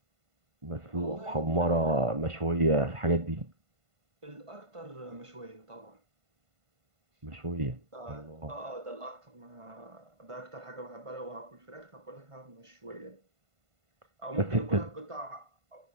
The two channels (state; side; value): late; left; 1.5 ms